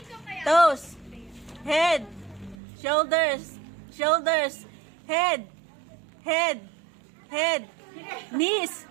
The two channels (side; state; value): left; drops out; at 2.6 s